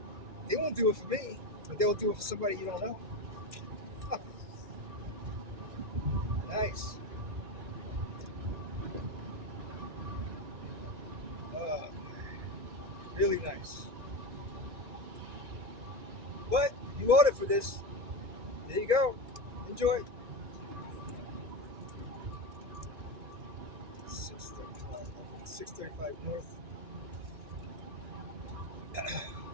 They won't do it for me, but they'll do it for somebody you don't know. Nice. Really nice. But you voted for this. There you go. Enjoy. 635 North.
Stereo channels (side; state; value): left; late; 1.9 ms